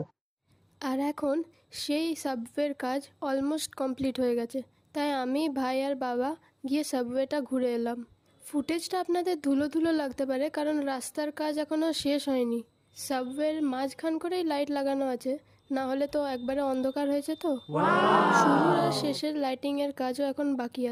আর এখন সেই সাবওয়ের কাজ অলমোস্ট কমপ্লিট হয়ে গেছে, তাই আমি, ভাই আর বাবা গিয়ে সাবওয়েটা ঘুরে এলাম। ফুটেজটা আপনাদের ধুলো ধুলো লাগতে পারে, কারণ রাস্তার কাজ এখনও শেষ হয়নি। সাবওয়ের মাঝখান করেই লাইট লাগানো আছে, না হলে তো একবারে অন্ধকার হয়েছে। তো শুরুর আর শেষের লাইটিংয়ের কাজও এখন বাকি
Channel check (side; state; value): both; identical; correlation 1.00